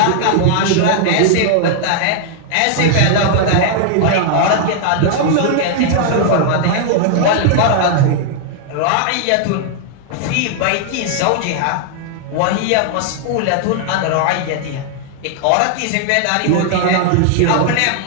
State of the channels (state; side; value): different; both; correlation 0.00